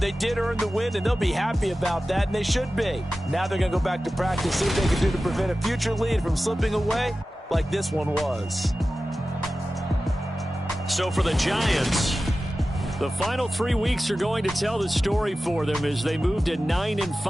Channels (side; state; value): both; normal; correlation 0.95